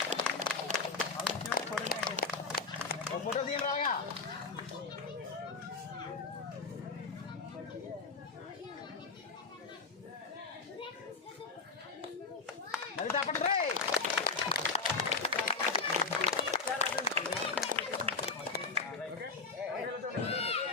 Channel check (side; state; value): right; quieter; 4.5 dB